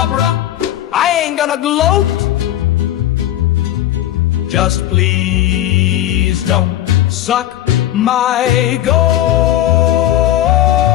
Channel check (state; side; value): quieter; right; 13.1 dB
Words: I ain't gonna gloat. Just please don't suck my goat.